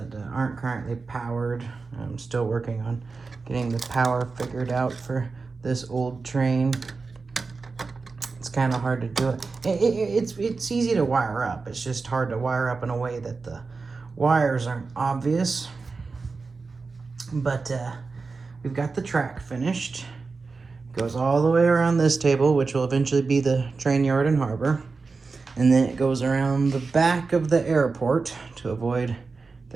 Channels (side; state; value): left; quieter; 4.3 dB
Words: aren't currently powered. I'm still working on getting the power figured out for this old train. It's kind of hard to do it. It's easy to wire up. It's just hard to wire up in a way that the wires aren't obvious. But we've got the track finished. Goes all the way around this table, which will eventually be the train yard and harbor. And then it goes around the back of the airport to avoid